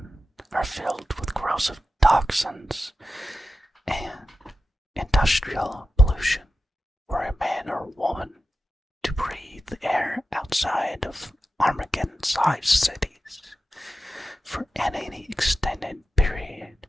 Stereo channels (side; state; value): both; normal; correlation 0.92